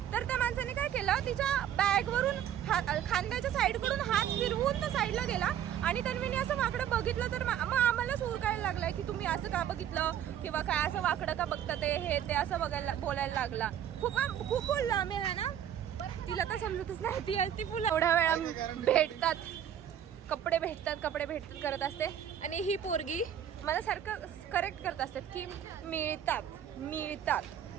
तर त्या माणसाने काय केलं, तिच्या बॅग वरून खांद्याच्या साईड कडून हात फिरवून तो साईडला गेला. आणि तन्वीने असं वाकडं बघितलं तर मग आम्हालाच उरकायला लागलाय की तुम्ही असं का बघितलं किंवा काय असं वाकडं का बघता ते असं बोलायला लागला. खूप बोललो आम्ही है ना. तिला तर समजतच नाही. ती फुलं एवढ्या वेळा भेटतात, कपडे भेटतात करत असते. आणि ही पोरगी मला सारखं करेक्ट करत असतात की मिळतात.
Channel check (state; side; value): quieter; left; 10.1 dB